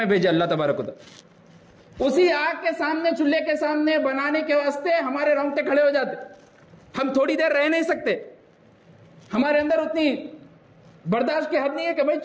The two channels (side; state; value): both; identical; correlation 1.00